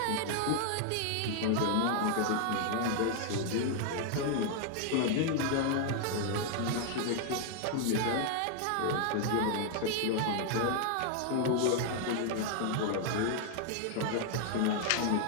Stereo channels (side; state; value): both; different; correlation 0.00